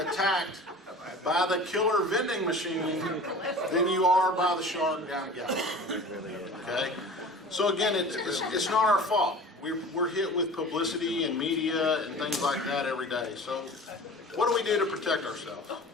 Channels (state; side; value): normal; both; correlation 0.40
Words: attacked by the killer vending machine than you are by the shark down at Gallup. Okay? So again, it's not our fault. We're hit with publicity and media and things like that every day. So what do we do to protect ourselves?